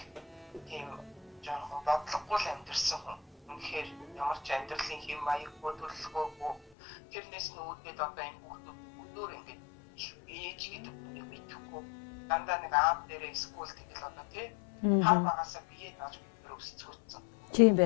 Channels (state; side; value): drops out; right; at 6.6 s